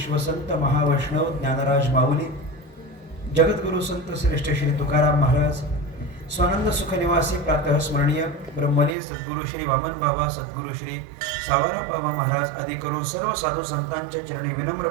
महावैष्णव ज्ञानराज माऊली जगद्गुरु संत श्रेष्ठ श्री तुकाराम महाराज स्वानंद सुख निवासी प्रातः स्मरणीय ब्रह्मलीन सद्गुरु श्री वामन बाबा सद्गुरु श्री सावरा बाबा महाराज आदी करून सर्व साधू संतांच्या चरणी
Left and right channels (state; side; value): drops out; left; at 9.0 s